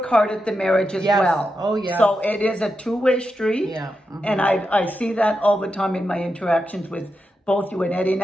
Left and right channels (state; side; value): normal; both; correlation 0.87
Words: hard at the marriage as well. Oh yeah. So it is a two-way street. Yeah. Mm-hmm. And I see that all the time in my interactions with both you and Eddie.